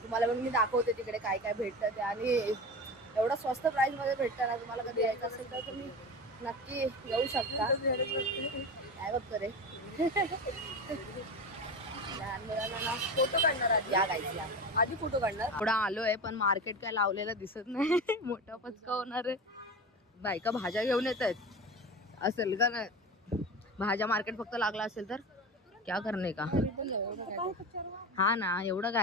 तुम्हाला पण मी दाखवते तिकडे काय काय भेटतं ते. आणि एवढं स्वस्त प्राईसमध्ये भेटतं ना, तुम्हाला कधी यायचं असेल तर तुम्ही नक्की येऊ शकता. काय बघतो रे, लहान मुलांना फोटो काढणार आधी. या गाईज या, आधी फोटो काढणार. थोडा आलोय पण मार्केट काय लावलेलं दिसत नाही. मोठा पचका होणार आहे. बायका भाज्या घेऊन येत आहेत असेल का नाही, भाज्या मार्केट फक्त लागला असेल तर क्या करणे का. हा ना, एवढं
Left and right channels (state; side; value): normal; both; correlation 0.27